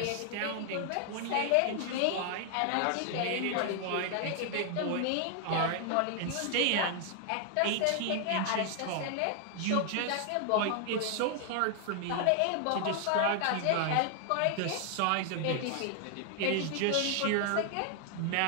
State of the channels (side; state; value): both; different; correlation 0.00